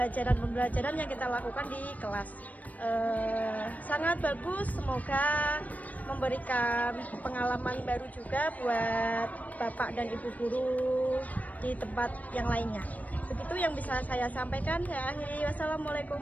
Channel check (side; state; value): right; late; 0.073 ms